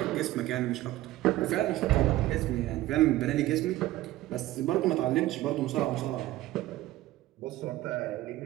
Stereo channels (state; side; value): quieter; left; 15.9 dB